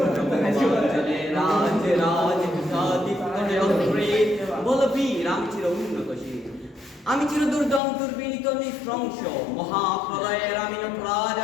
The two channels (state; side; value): drops out; right; at 7.8 s